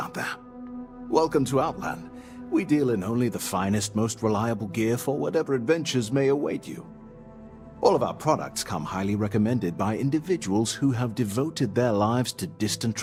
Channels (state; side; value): identical; both; correlation 1.00